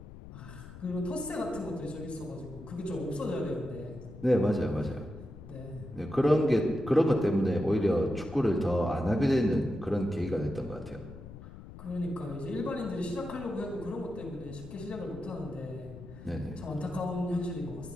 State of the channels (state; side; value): noise; left; rumble, 15 dB below the sound